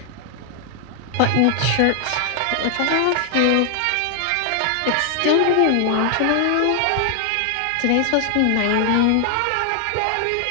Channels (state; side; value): different; both; correlation 0.00